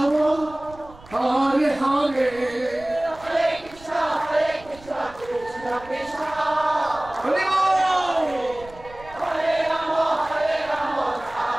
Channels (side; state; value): right; noise; rumble, 21 dB below the sound